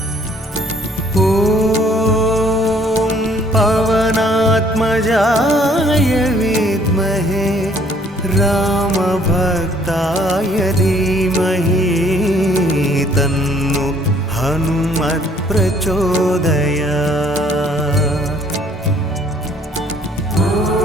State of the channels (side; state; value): both; normal; correlation 0.61